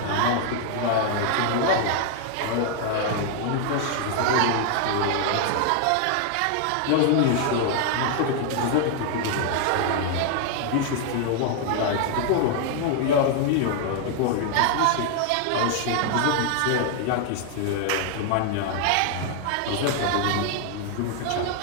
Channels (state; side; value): different; both; correlation 0.00